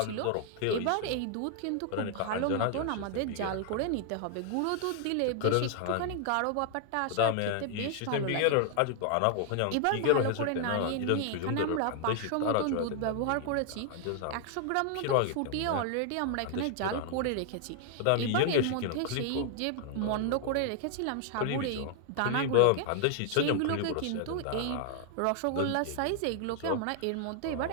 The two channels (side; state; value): both; different; correlation 0.00